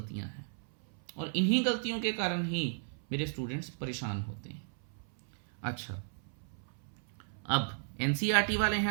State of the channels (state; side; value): silent; left; 55 dB below the other